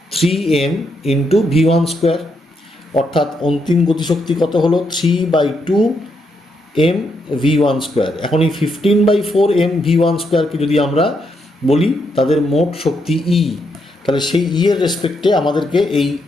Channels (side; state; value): both; normal; correlation 0.79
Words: 3m into v1 square, অর্থাৎ অন্তিম গতিশক্তি কত হলো? 3/2 m v1 স্কোয়ার। এখন এই 15/4 m v1 স্কোয়ারকে যদি আমরা বলি তাদের মোট শক্তি ই, তাহলে সেই ই এর রেসপেক্টে আমাদেরকে এই